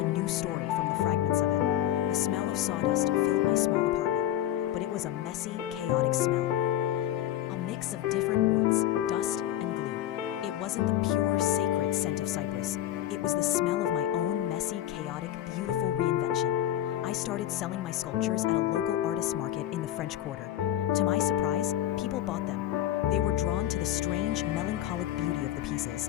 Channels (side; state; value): right; quieter; 12.4 dB